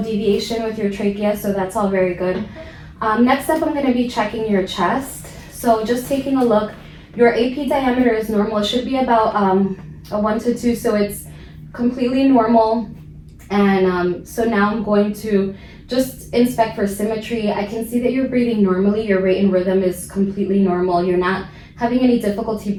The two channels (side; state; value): both; identical; correlation 1.00